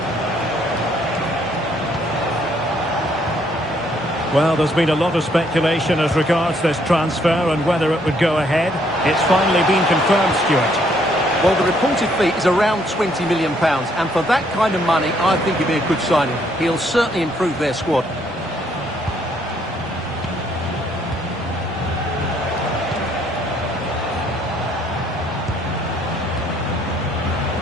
Well, there's been a lot of speculation as regards this transfer and whether it would go ahead. It's finally been confirmed, Stuart. Well, the reported fee is around £20 million, and for that kind of money, I think it'd be a good signing. He'll certainly improve their squad.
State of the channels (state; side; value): normal; both; correlation 0.68